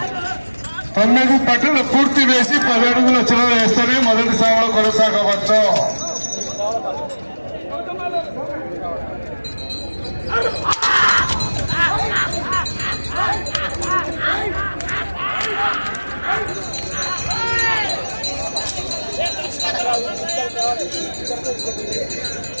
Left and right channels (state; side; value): inverted; both; correlation -1.00